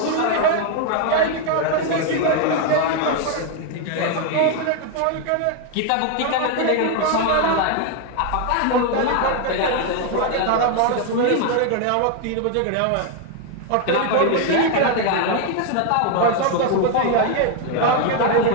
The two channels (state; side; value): different; both; correlation 0.01